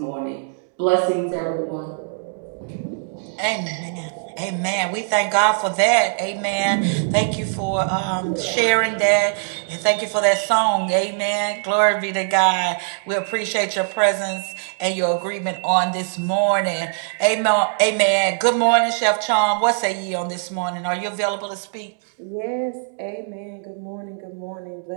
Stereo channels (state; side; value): silent; left; 62 dB below the other